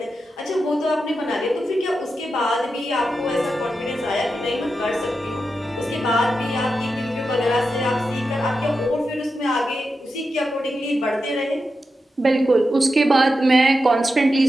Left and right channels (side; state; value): both; normal; correlation 0.89